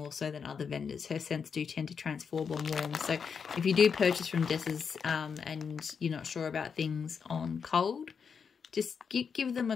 so than other vendors. Her scents do tend to transform on warm. So if you do purchase from Dessa's and you're not sure about things on cold, Just give them a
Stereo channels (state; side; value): quieter; right; 6.3 dB